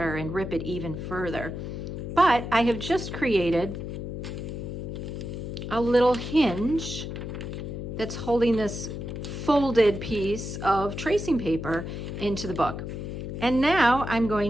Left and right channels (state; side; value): noise; left; hum, 6 dB below the sound